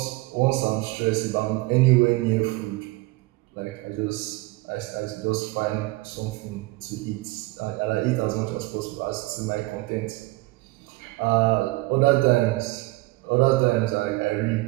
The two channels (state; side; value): quieter; left; 21.6 dB